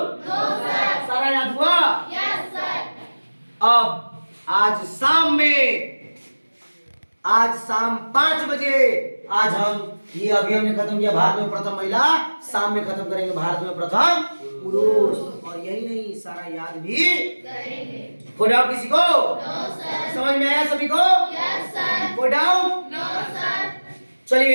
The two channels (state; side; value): inverted; both; correlation -1.00